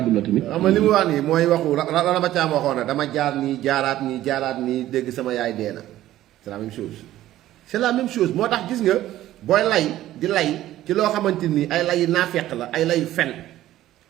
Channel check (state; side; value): quieter; left; 14.1 dB